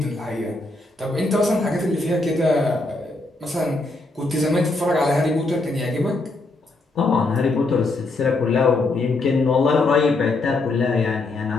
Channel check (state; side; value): quieter; right; 3.1 dB